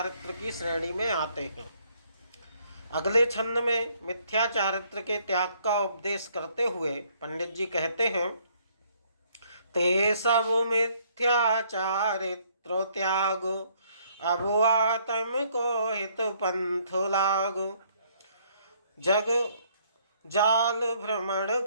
की श्रेणी में आते हैं। अगले छंद में मिथ्या चारित्र के त्याग का उपदेश करते हुए पंडित जी कहते हैं, ते सब मिथ्या चारित्र त्याग, अब आत्म को हित पंथ लागो, जग जाल भ्रमण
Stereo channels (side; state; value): both; inverted; correlation -0.66